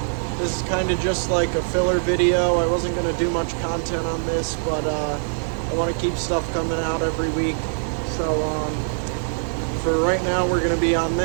This is kind of just like a filler video. I wasn't going to do much content on this, but I want to keep stuff coming out every week. So for right now, we're going to be on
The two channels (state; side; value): silent; left; digital silence